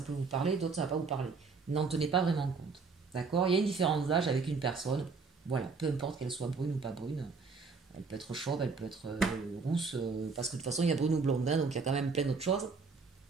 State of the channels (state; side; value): quieter; left; 4.6 dB